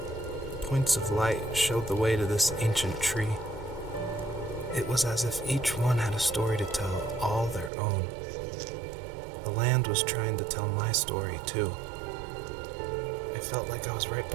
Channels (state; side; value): drops out; left; at 7.7 s